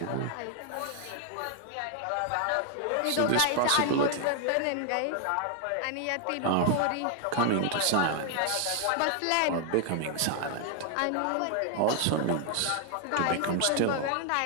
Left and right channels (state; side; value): different; both; correlation 0.00